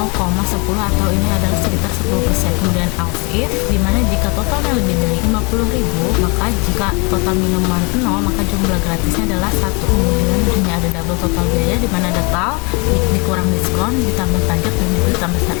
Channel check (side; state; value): right; quieter; 31.4 dB